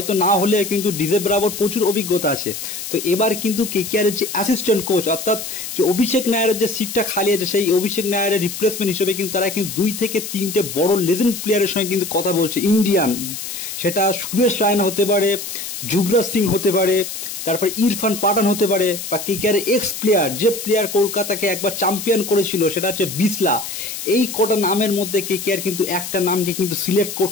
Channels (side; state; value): left; noise; hiss, 7 dB below the sound